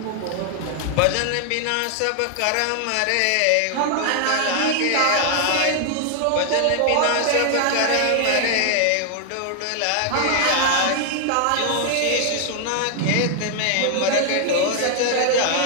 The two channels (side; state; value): both; different; correlation 0.00